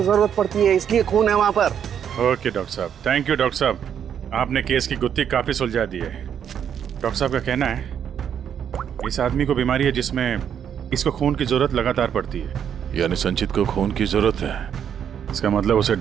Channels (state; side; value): quieter; left; 8.6 dB